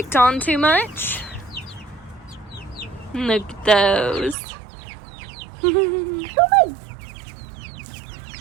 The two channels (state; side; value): drops out; left; at 4.4 s